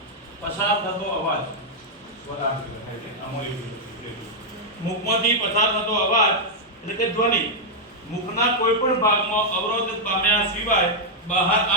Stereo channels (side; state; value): both; normal; correlation -0.04